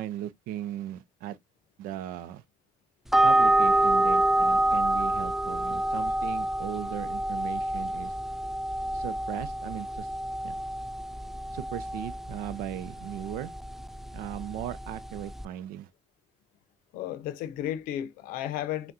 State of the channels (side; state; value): both; normal; correlation 0.86